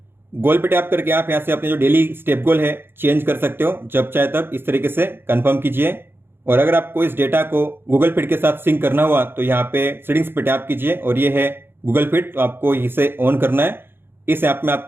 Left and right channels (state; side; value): late; left; 0.10 ms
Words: गोल पे टैप करके आप यहाँ से अपने जो डेली स्टेप गोल है चेंज कर सकते हो जब चाहे तब इस तरीके से, कंफर्म कीजिए। और अगर आपको इस डेटा को गूगल फिट के साथ सिंक करना हुआ तो यहाँ पे सेटिंग्स पे टैप कीजिए, और ये है गूगल फिट, तो आपको इसे ऑन करना है। इस ऐप में